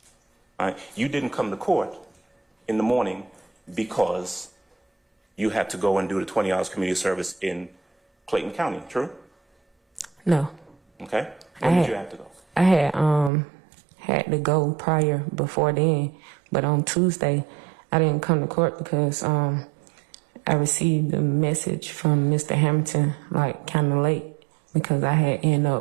right? You didn't come to court in the morning because you had to go and do the 20 hours community service in Clayton County, true? No. Okay. When did you have to go? I had to go prior before then, but on Tuesday, I didn't come to court because I received a message from Mr. Hamilton like kind of late because I had ended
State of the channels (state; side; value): drops out; left; at 13.3 s